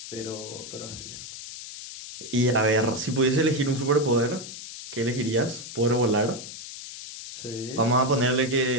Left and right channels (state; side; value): noise; left; hiss, 11 dB below the sound